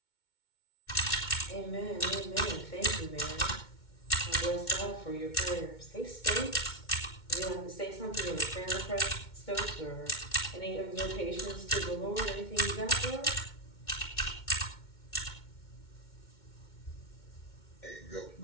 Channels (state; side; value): late; right; 2.2 ms